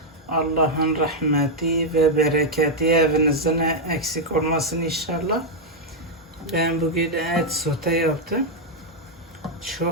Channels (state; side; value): normal; both; correlation -0.01